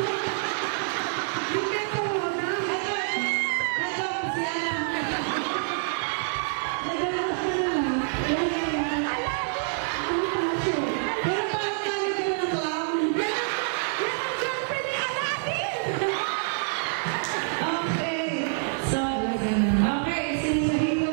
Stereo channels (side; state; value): left; silent; 60 dB below the other